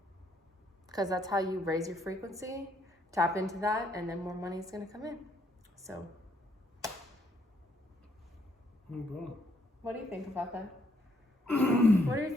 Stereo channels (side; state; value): both; normal; correlation 0.71